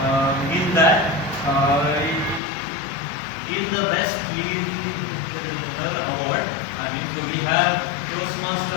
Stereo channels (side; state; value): right; drops out; at 2.4 s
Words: in that in the best leader award, I mean, so we have